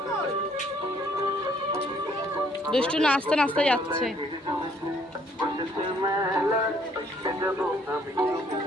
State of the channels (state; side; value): normal; both; correlation 0.64